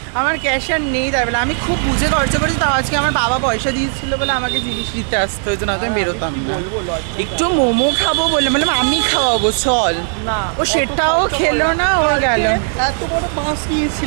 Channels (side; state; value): left; silent; 64 dB below the other